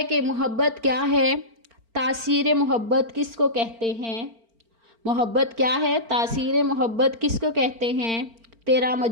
کہ محبت کیا ہے؟ تاثیر محبت کس کو کہتے ہیں؟ محبت کیا ہے؟ تاثیر محبت کس کو کہتے ہیں؟ تیرا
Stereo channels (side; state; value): left; late; 4.4 ms